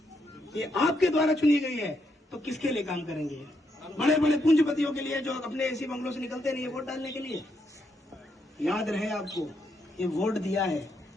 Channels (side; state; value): both; normal; correlation 0.78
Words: ये आपके द्वारा चुनी गई है, तो किसके लिए काम करेंगे? बड़े बड़े पूंजीपतियों के लिए जो अपने ऐसी बंगलों से निकलते नहीं है वोट डालने के लिए। याद रहे आपको, ये वोट दिया है,